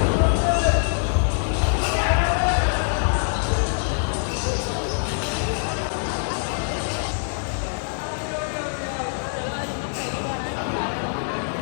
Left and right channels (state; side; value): silent; right; digital silence